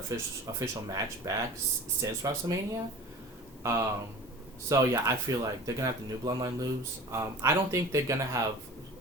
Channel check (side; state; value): both; normal; correlation 0.39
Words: match back since WrestleMania. So yeah, I feel like they're gonna have the new Bloodline lose. I don't think they're gonna have.